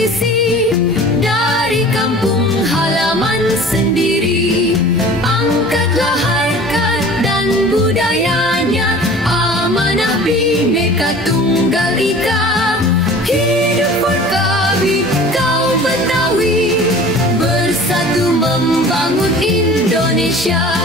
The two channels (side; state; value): both; normal; correlation 0.43